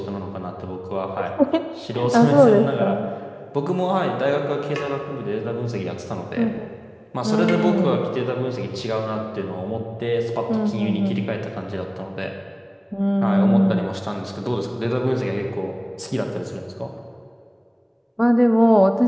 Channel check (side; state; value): both; identical; correlation 1.00